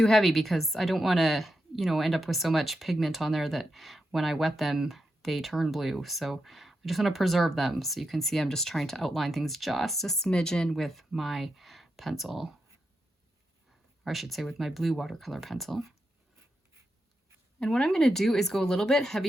heavy because I don't want to, you know, end up with so much pigment on there that when I wet them, they turn blue. So I just want to preserve them. So you can see I'm just trying to outline things just a smidgen with my pencil, or I should say with my blue watercolor pencil. And what I'm going to do is go a little bit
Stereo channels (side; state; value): both; normal; correlation 0.86